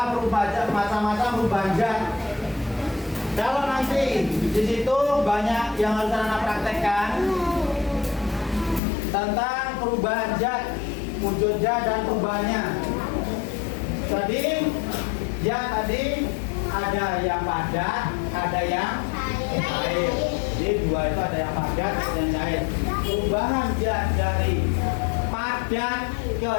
macam-macam perubahan zat. Kalau nanti di situ banyak yang harus anak praktekkan tentang perubahan zat, wujud zat dan perubahannya. Tadi ada yang padat, ada yang cair. Jadi dua itu ada yang padat, ada yang cair. Perubahan zat dari padat ke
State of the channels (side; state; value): right; drops out; at 8.8 s